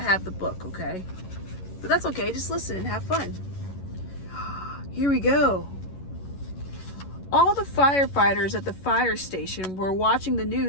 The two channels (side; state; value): right; late; 11 ms